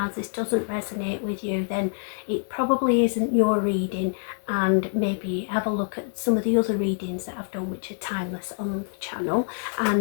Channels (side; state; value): right; silent; 61 dB below the other